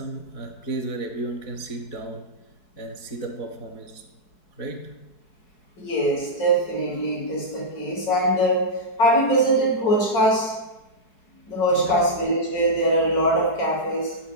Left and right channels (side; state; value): right; late; 4.7 ms